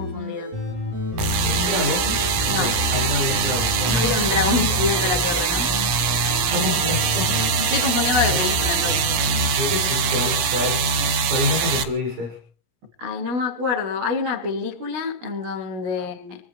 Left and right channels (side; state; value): left; late; 17 ms